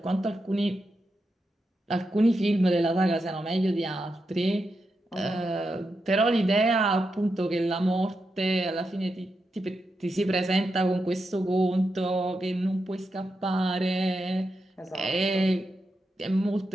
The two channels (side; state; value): both; normal; correlation 0.87